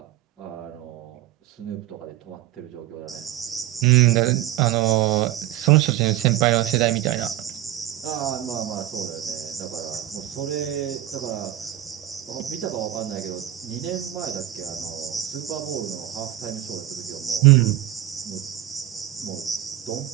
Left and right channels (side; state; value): left; quieter; 13.2 dB